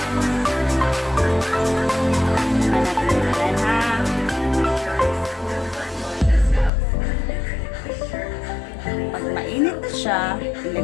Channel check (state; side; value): drops out; right; at 6.7 s